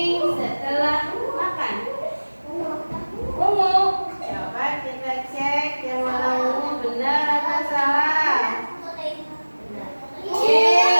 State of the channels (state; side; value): inverted; both; correlation -1.00